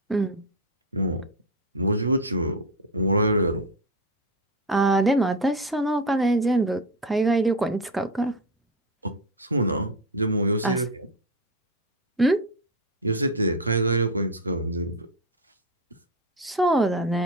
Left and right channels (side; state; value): both; normal; correlation 0.14